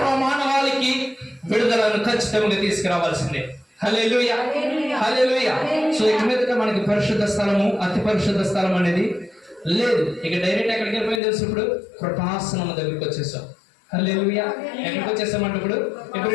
విడుదలను ఖచ్చితంగా తీసుకురావాల్సిందే. హల్లెలూయా. హల్లెలూయా. సో ఇక మీదట మనకి పరిశుద్ధ స్థలము, అతి పరిశుద్ధ స్థలం అనేది లేదు. ఇక డైరెక్ట్ ఎక్కడికి వెళ్ళిపోయింది తెలుసు? ఇప్పుడు కృపాసనం దగ్గరికి వచ్చేసాం. హల్లెలూయా. ఎక్కడికి వచ్చేసామంటే ఇప్పుడు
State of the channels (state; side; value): drops out; right; at 11.2 s